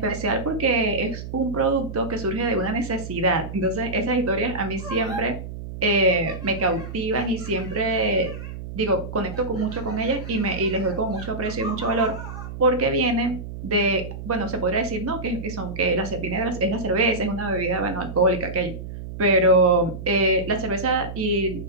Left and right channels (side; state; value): right; noise; hum, 9 dB below the sound